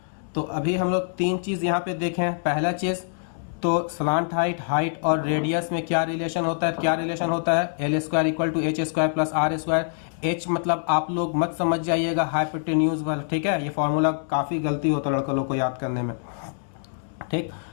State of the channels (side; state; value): right; silent; digital silence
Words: तो अभी हम लोग तीन चीज यहाँ पे देखें। पहला चीज तो स्लांट हाइट और रेडियस में क्या रिलेशन होता है, क्या रिलेशन होता है, L square equal to H square plus R square. H मतलब आप लोग मत समझ जाइएगा हाइपोटेन्यूज वाला, ठीक है, ये फॉर्मूला काफी गलती होता है लड़कों लोग को याद करने में, ठीक,